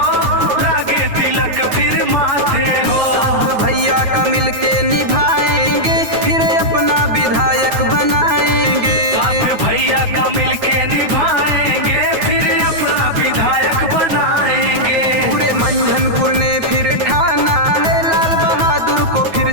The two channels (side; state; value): left; late; 9.3 ms